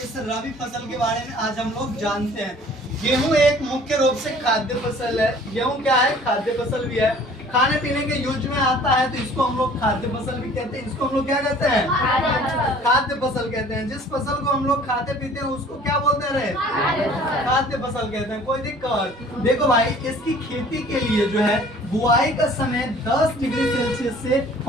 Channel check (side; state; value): both; normal; correlation 0.51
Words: रबी फसल के बारे में आज हम लोग जानते हैं। गेहूं एक मुख्य रूप से खाद्य फसल है। गेहूं क्या है? खाद्य फसल भी है, खाने पीने के यूज में आता है, तो इसको हम लोग खाद्य फसल भी कहते हैं। इसको हम लोग क्या कहते हैं? खाद्य फसल कहते हैं। जिस फसल को हम लोग खाते पीते हैं उसको क्या बोलते हैं? खाद्य फसल कहते हैं। कोई दिक्कत? देखो भाई, इसकी खेती के लिए जो है बुआई का समय 10 डिग्री सेल्सियस से